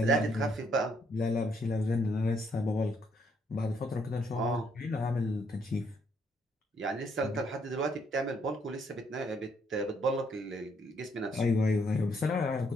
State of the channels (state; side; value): normal; both; correlation 0.71